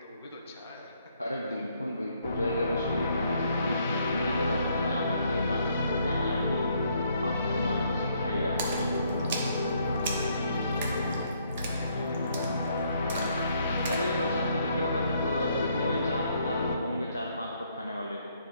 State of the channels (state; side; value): inverted; both; correlation -0.70